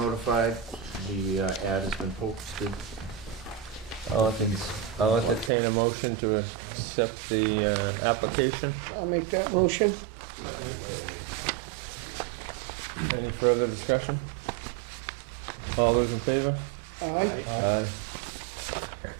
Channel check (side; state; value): left; drops out; at 5.5 s